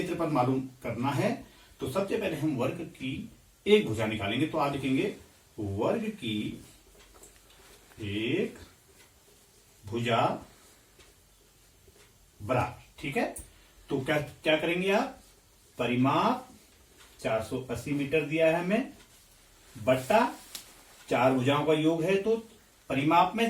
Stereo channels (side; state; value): both; identical; correlation 1.00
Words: मालूम करना है। तो सबसे पहले हम वर्ग की एक भुजा निकालेंगे। तो आप लिखेंगे वर्ग की एक भुजा बराबर। ठीक है, तो क्या क्या करेंगे आप, परिमाप 480 मीटर दिया है हमें, बट्टा 4 भुजाओं का योग है, तो परिमाप